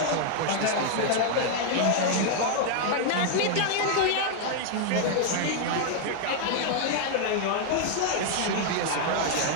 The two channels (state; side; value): different; both; correlation 0.00